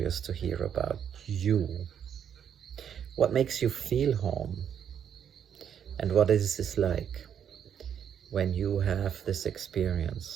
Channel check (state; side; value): quieter; left; 8.6 dB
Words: to hear about you. What makes you feel home? And what is this like when you have this